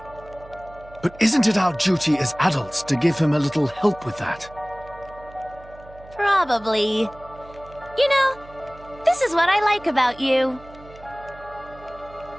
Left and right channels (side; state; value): right; noise; hum, 21 dB below the sound